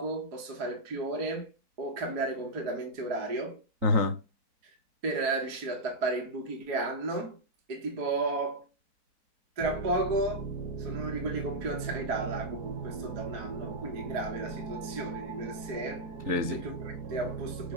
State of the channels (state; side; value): late; left; 4.7 ms